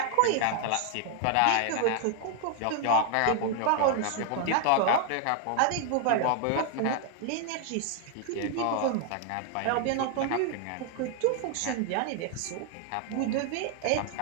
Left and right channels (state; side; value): different; both; correlation 0.00